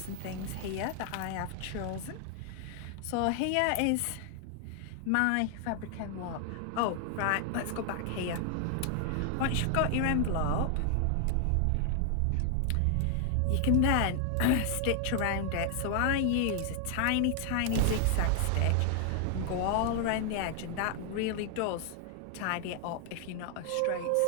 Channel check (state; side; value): different; both; correlation 0.00